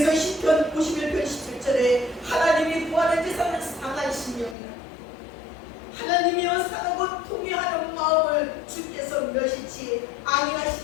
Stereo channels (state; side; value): drops out; right; at 4.5 s